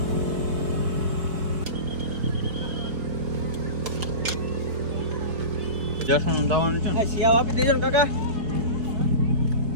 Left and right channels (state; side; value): late; left; 4.6 ms